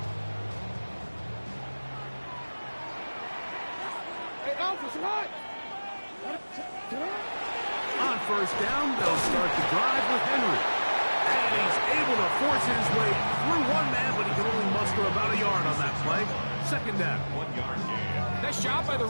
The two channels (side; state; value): both; inverted; correlation -1.00